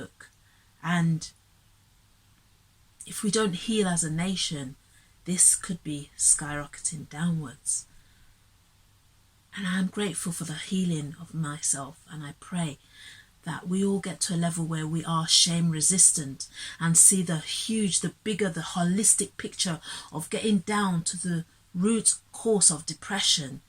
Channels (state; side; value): identical; both; correlation 1.00